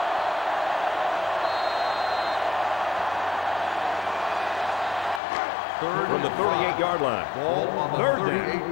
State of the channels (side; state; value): right; drops out; at 5.2 s